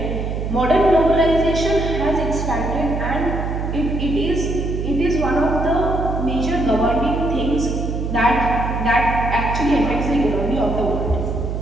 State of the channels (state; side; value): noise; right; hum, 3 dB below the sound